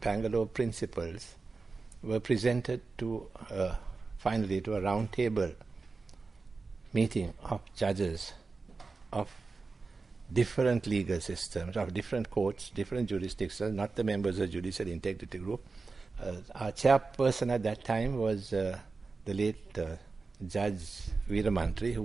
Bangalore principles were presented to finally to a round table meeting of judges of different legal systems, of different courts, different jurisdictions, not the members of Judicial Integrity Group. Our chairperson at that time was the late Judge Veeramantri, who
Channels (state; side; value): quieter; left; 4.1 dB